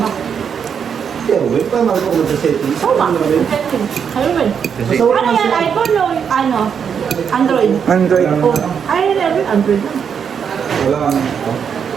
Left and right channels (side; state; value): left; quieter; 7.2 dB